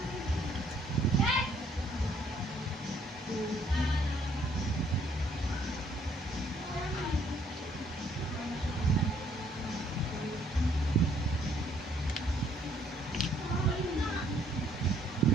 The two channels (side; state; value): both; normal; correlation 0.65